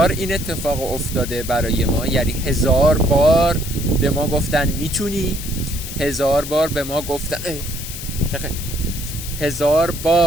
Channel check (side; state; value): left; noise; hiss, 9 dB below the sound